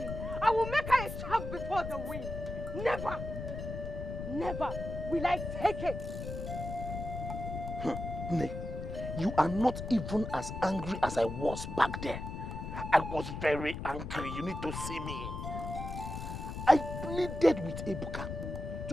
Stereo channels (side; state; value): left; noise; rumble, 6 dB below the sound